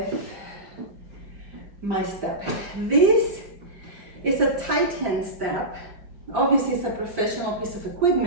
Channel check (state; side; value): late; left; 5.0 ms